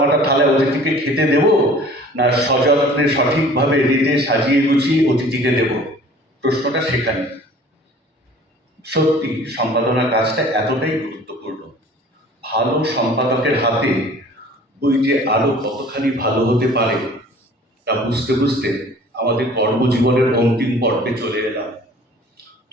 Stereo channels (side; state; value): both; normal; correlation 0.48